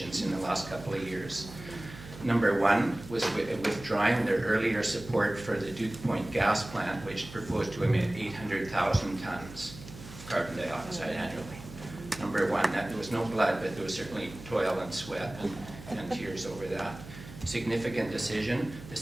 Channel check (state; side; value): noise; right; hum, 15 dB below the sound